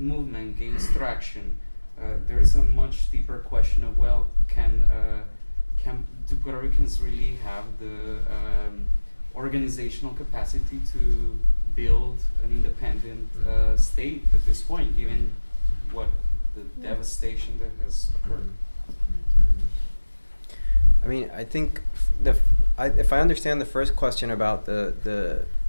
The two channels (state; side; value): inverted; both; correlation -1.00